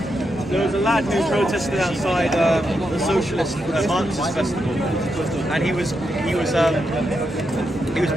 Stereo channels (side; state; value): both; normal; correlation 0.84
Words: a lad who protested outside the Socialist Marxist Festival, and he was